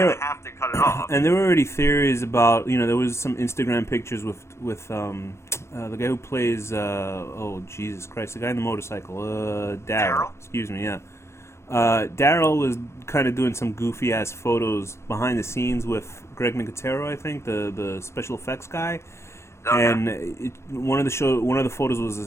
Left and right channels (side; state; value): right; late; 0.13 ms